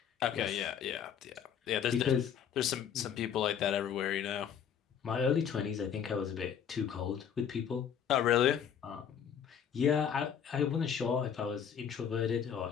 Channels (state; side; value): quieter; right; 8.2 dB